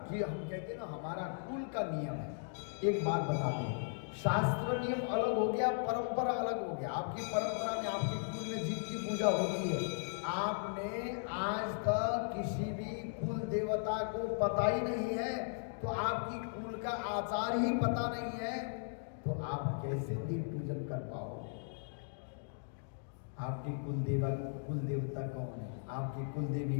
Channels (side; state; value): right; silent; digital silence